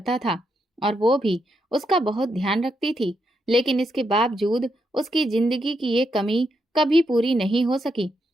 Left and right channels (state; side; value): normal; both; correlation 0.81